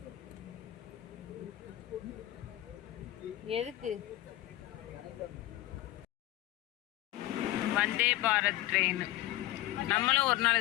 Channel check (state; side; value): quieter; right; 15.9 dB